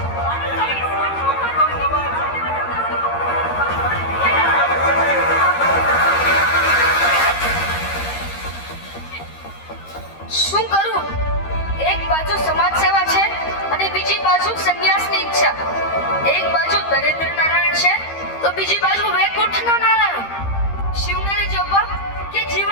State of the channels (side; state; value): right; late; 13 ms